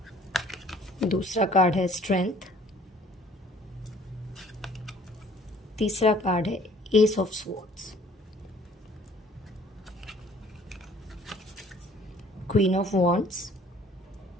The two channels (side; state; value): both; normal; correlation 0.55